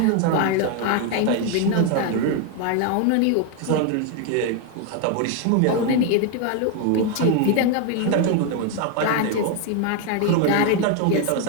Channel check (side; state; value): both; different; correlation 0.01